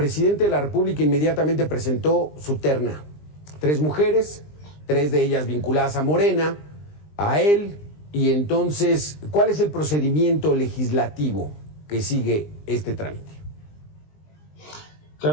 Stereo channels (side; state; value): right; late; 20 ms